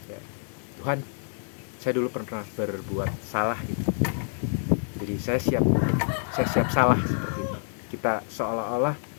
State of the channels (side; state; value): right; silent; digital silence